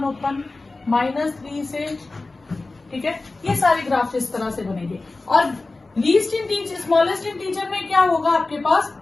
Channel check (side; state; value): right; quieter; 3.4 dB